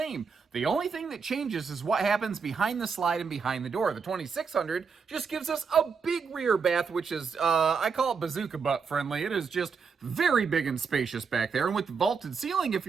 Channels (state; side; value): quieter; left; 5.6 dB